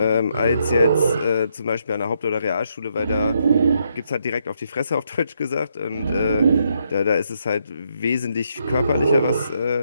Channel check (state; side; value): inverted; both; correlation -0.76